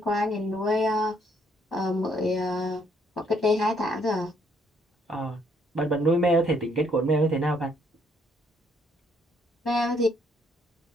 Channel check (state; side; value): normal; both; correlation 0.69